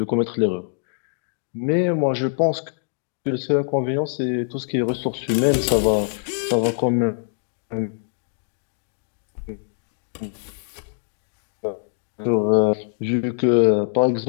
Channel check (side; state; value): right; silent; digital silence